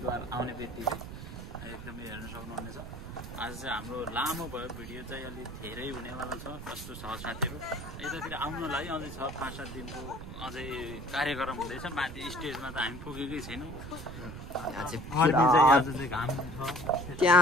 आउने बित्तिकै एकदमै हेर्न सक्नुहुनेछ। आज चाहिँ हाम्रो लामो भयो भिडियो चाहिँ अलि धेरै हुनेवाला छ। कस्तो छ साथीहरु यतातिर आउनलाई अझै छ 5-7 दिनको अझै कार्यक्रम हुँदैछ। माथि स्टेजमा त हामी पुगेकै छैनौँ। यहाँ चाहिँ घाम छ।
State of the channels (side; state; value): right; noise; rumble, 10 dB below the sound